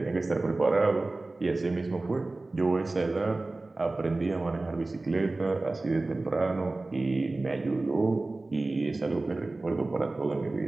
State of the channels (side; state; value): left; quieter; 3.1 dB